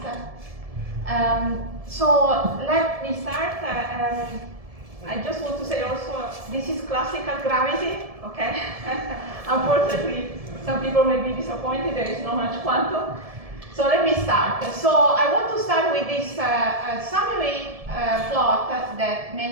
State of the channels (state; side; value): late; left; 1.7 ms